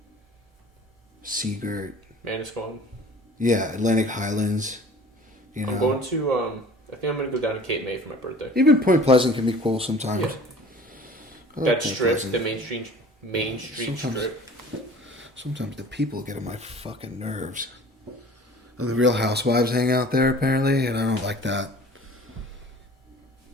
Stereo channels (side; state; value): both; normal; correlation 0.45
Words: Seagirt. Manasquan. Yeah, Atlantic Highlands. I'm going to, I think I'm going to go down to Cape May for my birthday. Even Point Pleasant can be cool sometimes. Yeah. That strip, the Main Street strip. Sometimes the people get on my fucking nerves. And the Real Housewives hang out there, apparently, and I don't like that.